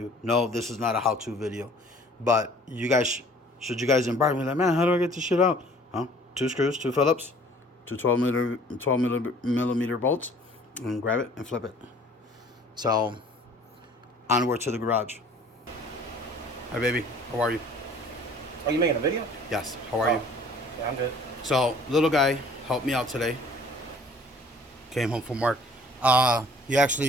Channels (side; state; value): both; normal; correlation 0.53